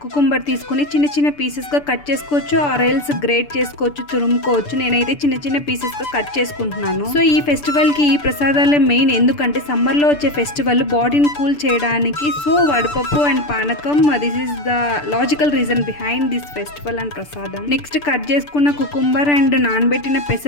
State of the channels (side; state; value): right; late; 6.8 ms